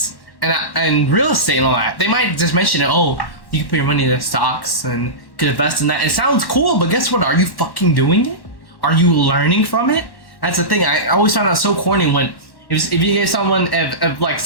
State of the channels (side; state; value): right; late; 1.1 ms